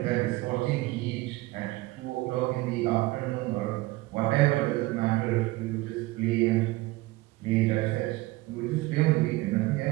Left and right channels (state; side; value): quieter; left; 19.9 dB